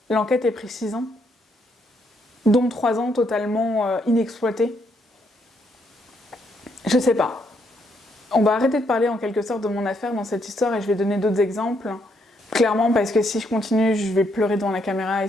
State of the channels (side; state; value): both; normal; correlation 0.74